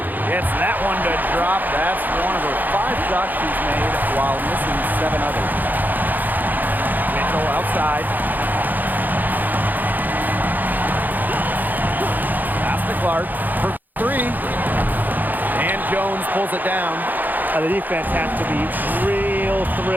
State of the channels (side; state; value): left; late; 0.085 ms